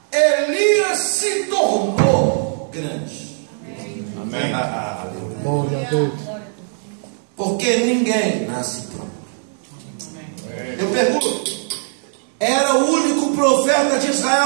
Elias se tornou grande. Amém. Glória a Deus. Porque ninguém nasce pronto. Eu pergunto: era o único profeta de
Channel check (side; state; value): left; silent; 66 dB below the other